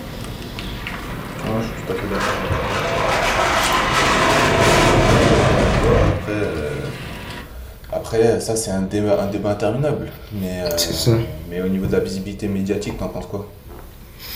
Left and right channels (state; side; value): identical; both; correlation 1.00